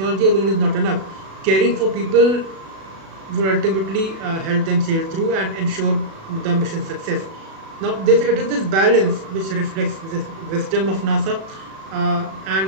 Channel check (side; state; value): left; late; 36 ms